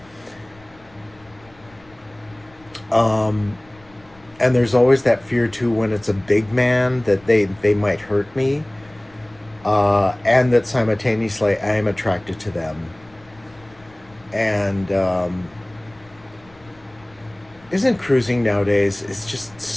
Um, and there's always that fear too when it's a big man, that they might hurt me, and that simultaneously I am attracted to them. And isn't cruising nowadays? It's just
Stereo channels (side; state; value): left; noise; rumble, 27 dB below the sound